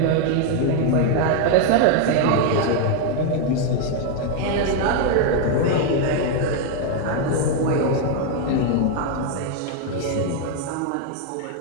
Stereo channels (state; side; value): different; both; correlation 0.01